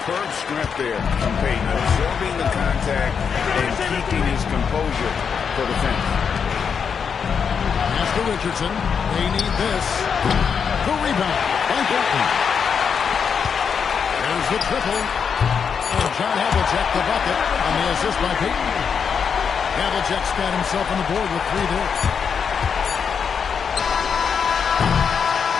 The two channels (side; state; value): right; quieter; 6.6 dB